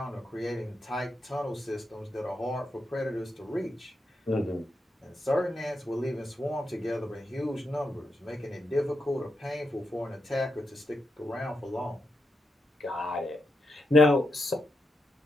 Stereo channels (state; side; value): normal; both; correlation 0.85